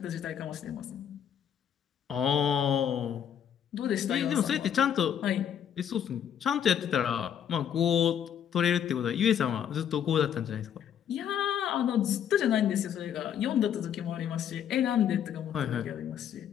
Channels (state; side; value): quieter; right; 9.0 dB